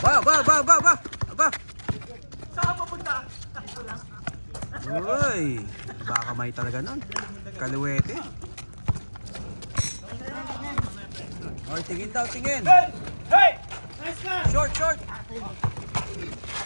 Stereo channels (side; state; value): both; inverted; correlation -1.00